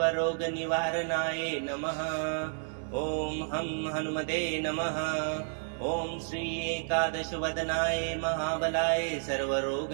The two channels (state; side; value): silent; left; digital silence